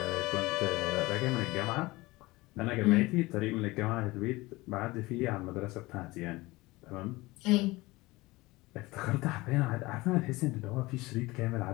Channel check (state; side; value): quieter; right; 21.0 dB